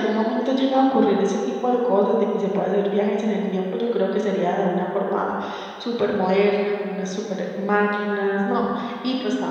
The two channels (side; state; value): both; identical; correlation 1.00